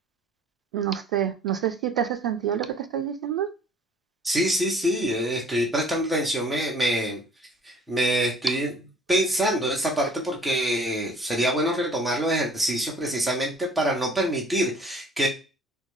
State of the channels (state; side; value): normal; both; correlation 0.52